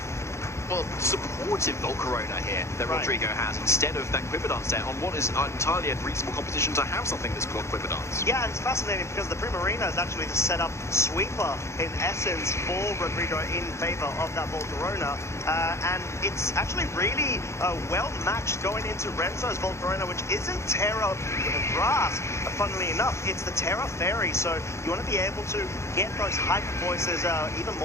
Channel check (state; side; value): late; right; 0.13 ms